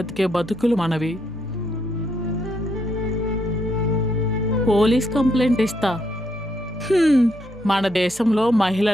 బతుకులు మనవి. పోలీస్ కంప్లైంట్ ఇస్తా. మన దేశంలో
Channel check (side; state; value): both; normal; correlation 0.76